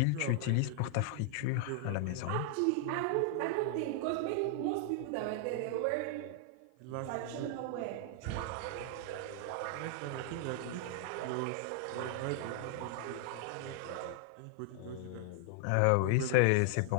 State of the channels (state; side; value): different; both; correlation 0.00